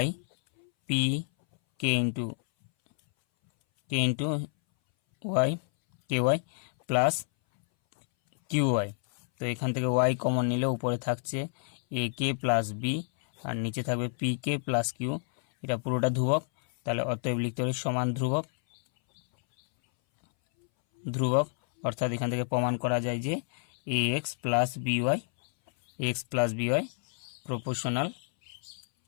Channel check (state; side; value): silent; right; 59 dB below the other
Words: p k into y k y plus q y. তো এখান থেকে ওয়াই কমন নিলে উপরে থাকছে এ কে প্লাস বি আর নিচে থাকবে পি কে প্লাস কিউ, এটা পুরোটা ধ্রুবক। তাহলে অতএব লিখতে পারি সমান ধ্রুবক অর্থাৎ এখান থেকে প্রমাণ করা যায় যে a x plus b y proportional